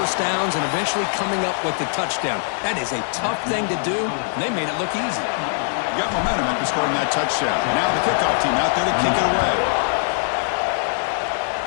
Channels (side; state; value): right; silent; digital silence